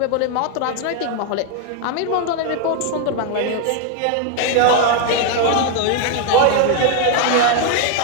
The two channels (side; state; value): both; different; correlation 0.00